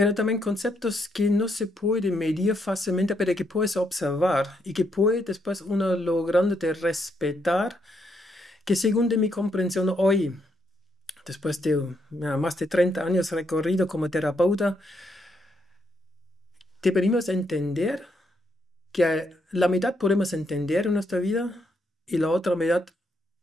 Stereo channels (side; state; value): both; normal; correlation 0.76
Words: también conceptos que no se pueden medir fácilmente, pero que puedes observar y que puede después uno logrando de respetar, que según de mi comprensión hoy, después de más de 30 años recorrido como terapeuta, deberíamos entender que la mitad podemos entender en nuestra vida y la otra mitad